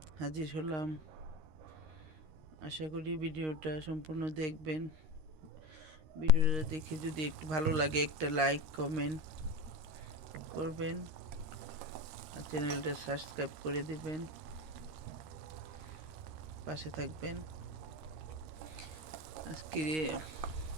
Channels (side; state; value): left; late; 13 ms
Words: হাজির হলাম। আশা করি ভিডিওটা সম্পূর্ণ দেখবেন। ভিডিওটা দেখে যদি একটু ভালো লাগে একটা লাইক কমেন্ট করবেন আর চ্যানেলটা সাবস্ক্রাইব করে দিবেন, পাশে থাকবেন। আজকে